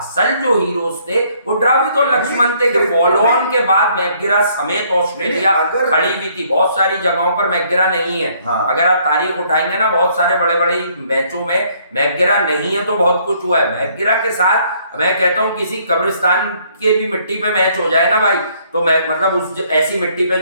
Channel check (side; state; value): both; inverted; correlation -0.65